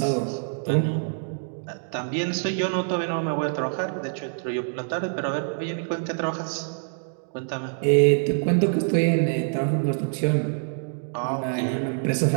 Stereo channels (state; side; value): silent; left; digital silence